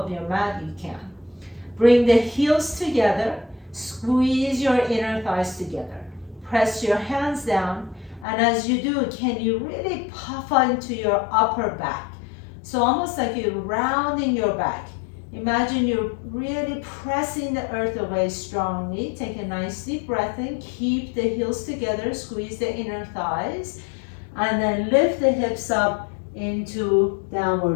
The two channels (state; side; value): drops out; right; at 8.2 s